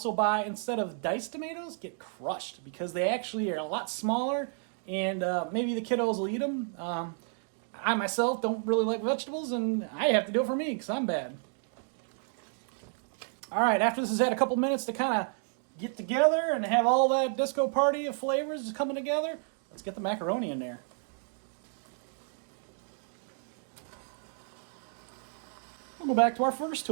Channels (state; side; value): silent; left; 57 dB below the other